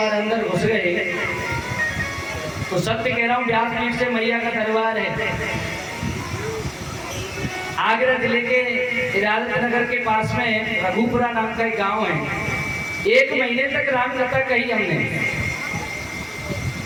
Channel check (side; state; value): both; identical; correlation 1.00